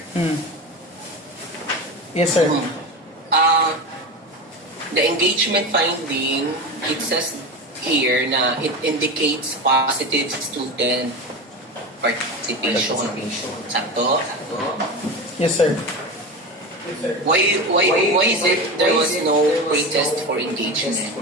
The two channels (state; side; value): normal; both; correlation 0.24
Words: Yes, sir. the engagement finding, it says here na it indicates positive student participation. Sakto? Yes, sir. Why is it there was no pretest for engagement?